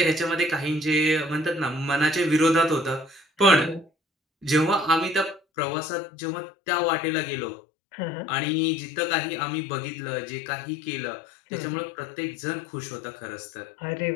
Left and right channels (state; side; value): drops out; right; at 5.4 s